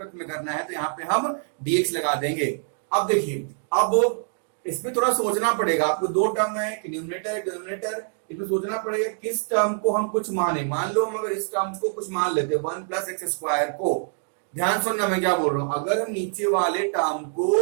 में करना है, तो यहाँ पे हम डीएक्स लगा देंगे। अब देखिए, अब इसमें थोड़ा सोचना पड़ेगा आपको। दो टर्म है, न्यूमरेटर डिनोमिनेटर, इसमें सोचना पड़ेगा किस टर्म को हम कुछ माने। मान लो हम अगर इस टर्म को कुछ मान लेते 1 प्लस एक्स स्क्वायर को, ध्यान सुनना मैं क्या बोल रहा हूं। अगर हम नीचे वाले टर्म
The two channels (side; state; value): left; silent; 62 dB below the other